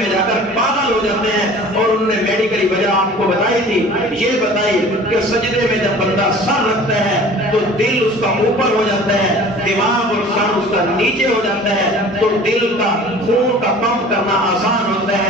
جا کر پاگل ہو جاتے ہیں۔ اور انہوں نے میڈیکلی وجہ آپ کو بتائی تھی، یہ بتائی کہ سجدے میں جب بندہ سر رکھتا ہے تو دل اس کا اوپر ہو جاتا ہے، دماغ اور سر اس کا نیچے ہو جاتا ہے، تو دل کا خون کا پمپ کرنا آسان ہوتا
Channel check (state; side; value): normal; both; correlation 0.45